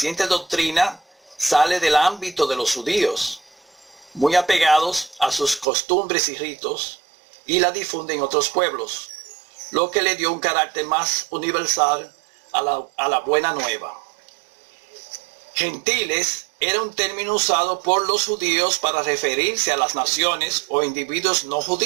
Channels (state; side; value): drops out; left; at 5.7 s